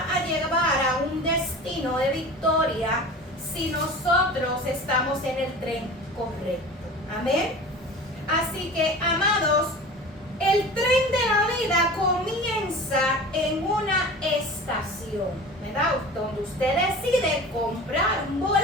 a llevar a un destino de victoria si nosotros estamos en el tren correcto. Amén. Así que, amados, el tren de la vida comienza en una estación, ¿verdad? Donde usted decide comprar un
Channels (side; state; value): both; normal; correlation 0.37